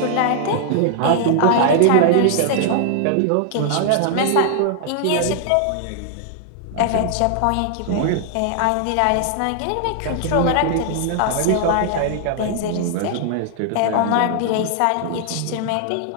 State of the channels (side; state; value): both; different; correlation 0.00